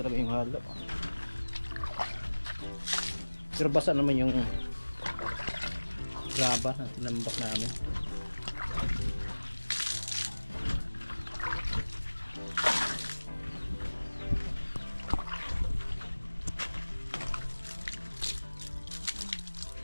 yung halo. Pero basa naman yung graba na tinambak namin.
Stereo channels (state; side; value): inverted; both; correlation -1.00